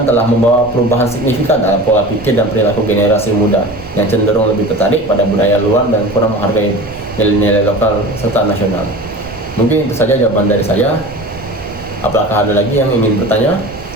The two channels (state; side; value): noise; right; rumble, 18 dB below the sound